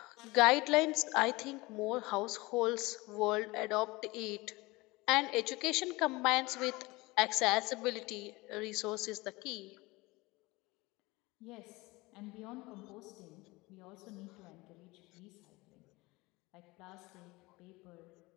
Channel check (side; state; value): right; quieter; 22.3 dB